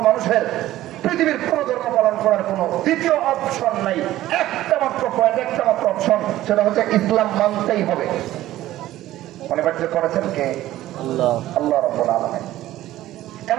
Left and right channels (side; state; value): left; quieter; 14.7 dB